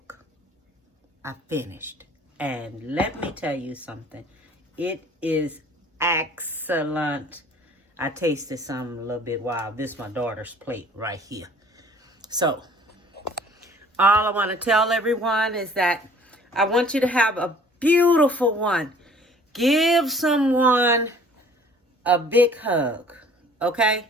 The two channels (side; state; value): both; normal; correlation 0.53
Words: I finished. And let me tell you something. It is excellent. I tasted some a little bit while. This is my daughter's plate right here. So, all I want to tell everyone is that I want you to have a beautiful one. Give someone a big hug, okay?